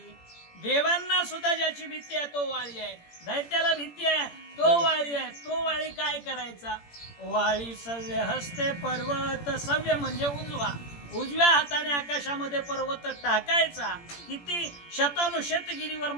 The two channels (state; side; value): late; right; 17 ms